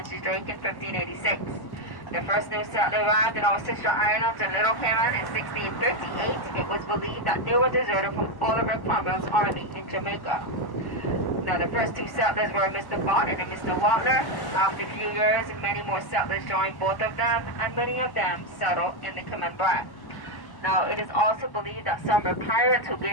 Drake in 1586. The first new settler arrived in our sister islands in Little Cayman in 1658. It was believed that they were deserted from Oliver Cromwell's army in Jamaica. Now, the first two settlers were Mr. Barton and Mr. Watler. After a few years, many more settlers joined both of them, and many of them settled in the Cayman Brac. Now, it is also believed that some were pirates who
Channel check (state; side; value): late; right; 1.1 ms